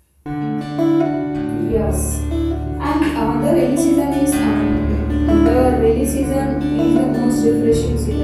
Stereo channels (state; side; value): identical; both; correlation 1.00